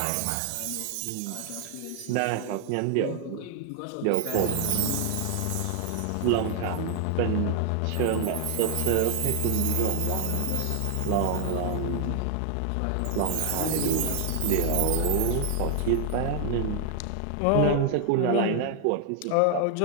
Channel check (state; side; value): different; both; correlation 0.00